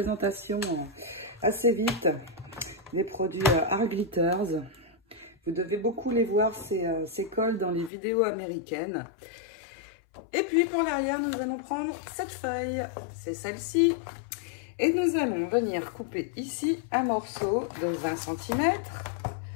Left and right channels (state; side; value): drops out; right; at 7.9 s